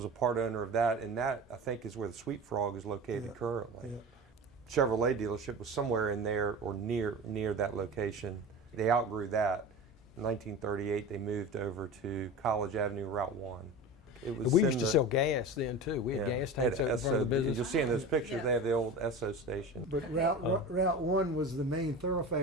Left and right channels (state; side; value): normal; both; correlation 0.31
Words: a part owner of that, and that, I think, is where the Sweet Frog is located currently. Yeah. Chevrolet dealership was somewhere in there or near that location. They outgrew that. In 1938, they moved over to College Avenue, Route 1. We used to sell gas then too. We had gas tanks over front of the business. You'll see in those pictures they have the old Esso station. But Route 1 was the main